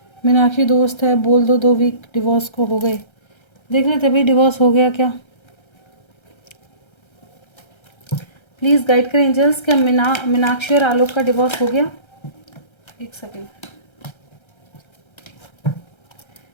मीनाक्षी दोस्त है, बोल दो 2 वीक डिवोर्स को हो गए। देख लेते भाई डिवोर्स हो गया क्या, प्लीज़ गाइड करें एंजल्स। क्या मीनाक्षी और आलोक का डिवोर्स हो गया? एक सेकेंड,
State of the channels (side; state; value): right; late; 1.3 ms